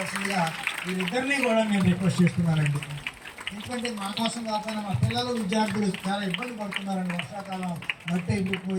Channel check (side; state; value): both; identical; correlation 1.00